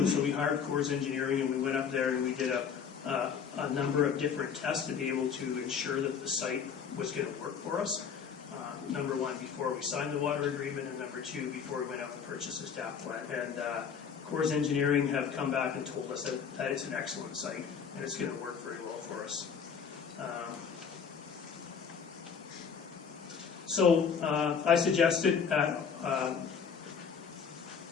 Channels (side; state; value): right; quieter; 6.8 dB